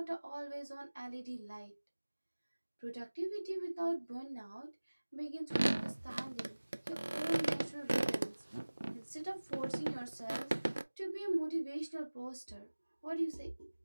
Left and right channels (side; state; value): both; inverted; correlation -1.00